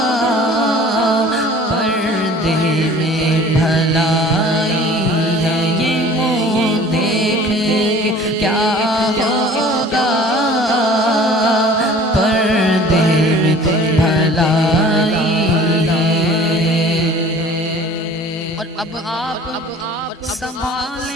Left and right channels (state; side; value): normal; both; correlation 0.47